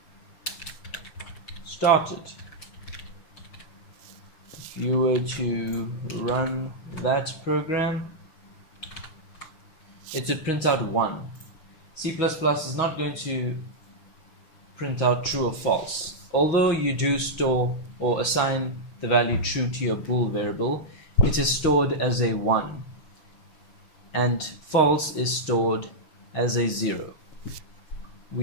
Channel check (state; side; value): late; right; 6.4 ms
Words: started. If you were to run that program, it would print out 1. C++ is not going to print out true or false. Although you do store or assign the value true to your bool variable, it is stored as a 1, and false is stored as a 0.